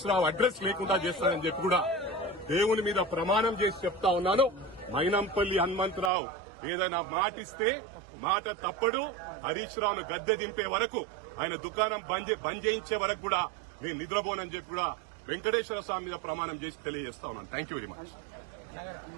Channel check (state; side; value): drops out; left; at 6.1 s